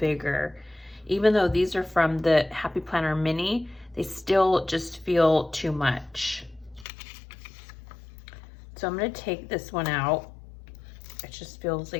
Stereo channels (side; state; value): right; drops out; at 6.9 s